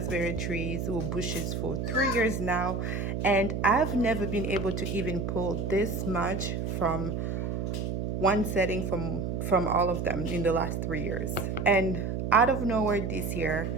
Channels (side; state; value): right; noise; hum, 2 dB below the sound